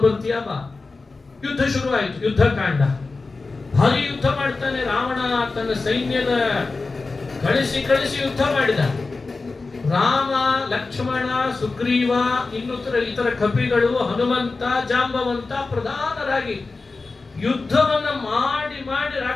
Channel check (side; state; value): right; quieter; 3.8 dB